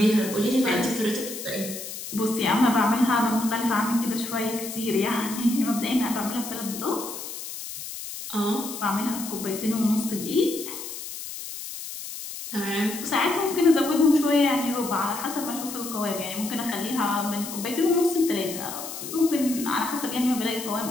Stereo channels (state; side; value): noise; left; hiss, 9 dB below the sound